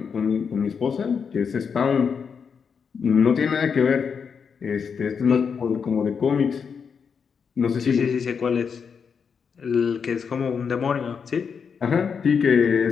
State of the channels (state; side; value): quieter; right; 6.3 dB